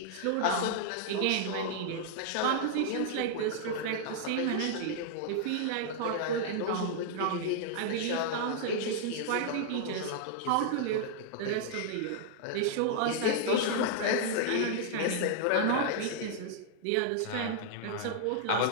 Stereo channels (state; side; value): different; both; correlation -0.01